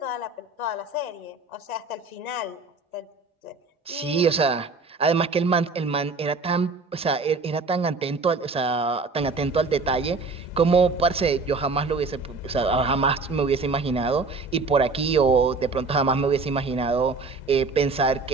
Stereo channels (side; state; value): left; quieter; 3.9 dB